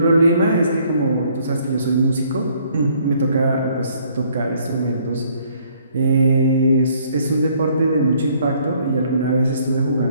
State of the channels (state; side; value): inverted; both; correlation -0.64